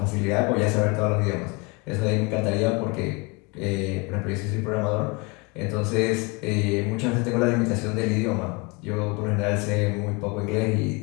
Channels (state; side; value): quieter; right; 28.0 dB